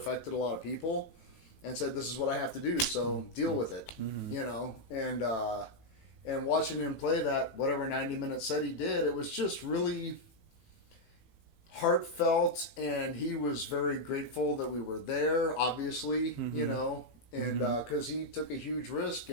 a lot of people and said, this is what I have to do, so deal with it. And watching him play that, whatever 90-minute set he did, it was just really heartfelt, and he was very grateful that we were there, obviously, and because he took a huge risk,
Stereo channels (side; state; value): right; late; 18 ms